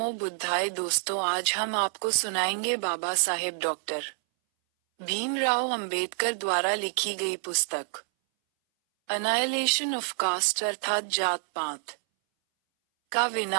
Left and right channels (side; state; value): left; silent; 60 dB below the other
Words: बुद्धाय। दोस्तों, आज हम आपको सुनाएंगे बाबा साहेब डॉक्टर भीमराव अंबेडकर द्वारा लिखी गई पुस्तक अनाइलेशन ऑफ कास्ट अर्थात जात पात का